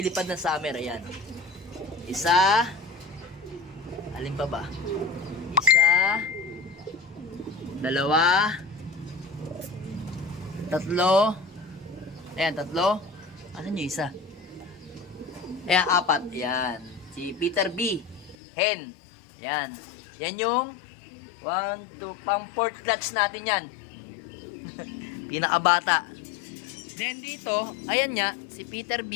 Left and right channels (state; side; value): drops out; right; at 18.4 s